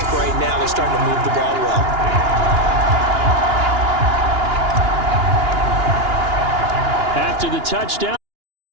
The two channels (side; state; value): left; late; 2.9 ms